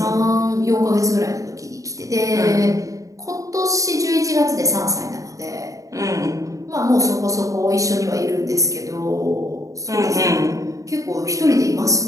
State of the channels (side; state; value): left; late; 0.16 ms